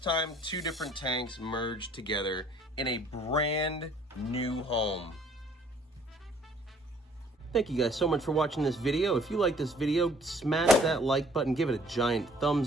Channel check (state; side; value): normal; both; correlation 0.58